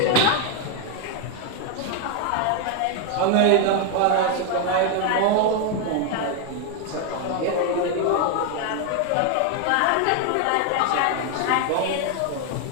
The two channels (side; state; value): both; different; correlation 0.01